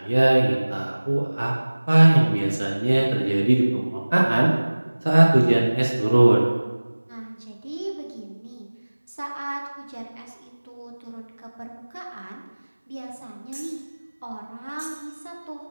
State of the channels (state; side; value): inverted; both; correlation -1.00